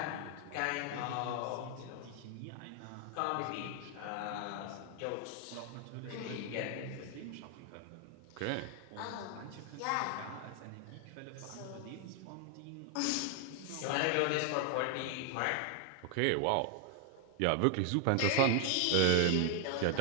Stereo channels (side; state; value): both; different; correlation 0.00